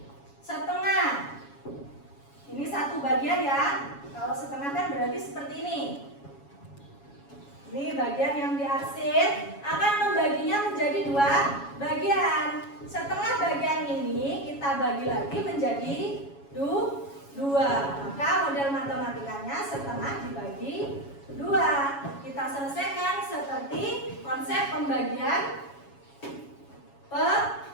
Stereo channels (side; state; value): right; late; 7.2 ms